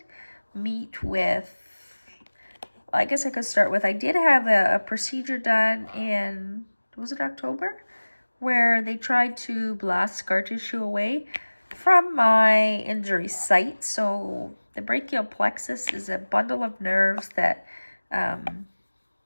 meet with, I guess I could start with, I did have a procedure done in, was it October? Where they tried to blast scar tissue away from my injury site. So the brachial plexus is a bundle of nerves that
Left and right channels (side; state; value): both; inverted; correlation -1.00